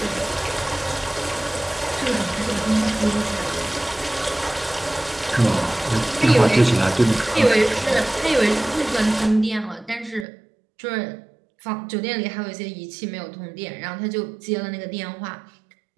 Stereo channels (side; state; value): left; drops out; at 10.2 s